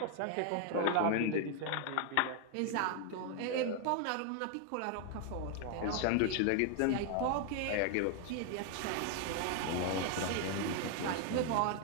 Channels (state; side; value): different; both; correlation 0.00